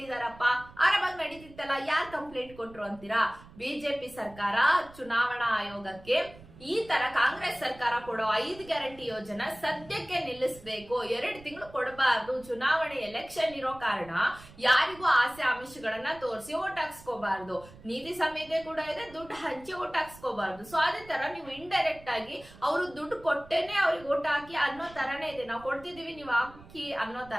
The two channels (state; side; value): noise; right; rumble, 21 dB below the sound